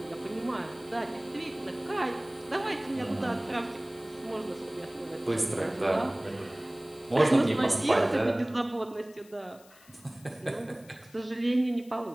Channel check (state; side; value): noise; left; hiss, 25 dB below the sound